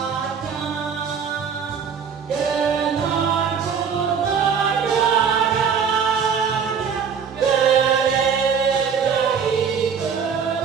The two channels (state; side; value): quieter; left; 6.6 dB